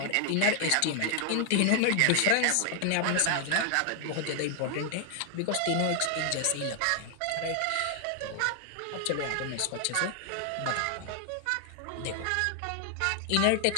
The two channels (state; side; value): different; both; correlation 0.00